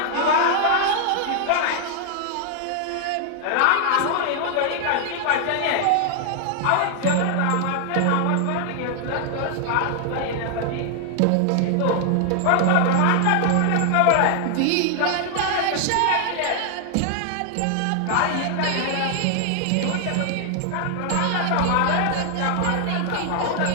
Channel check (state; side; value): different; both; correlation 0.00